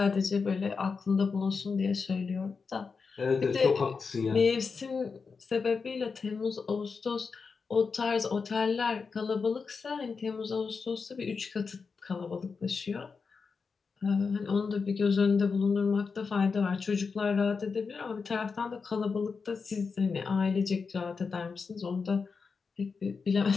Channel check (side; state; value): right; quieter; 5.1 dB